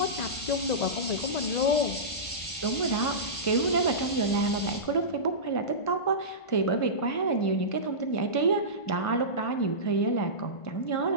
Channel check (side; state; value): right; late; 1.5 ms